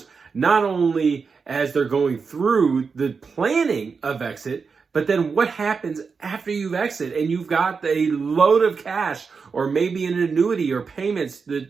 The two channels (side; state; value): left; quieter; 5.2 dB